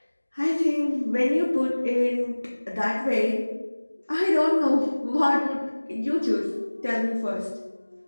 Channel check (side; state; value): both; inverted; correlation -1.00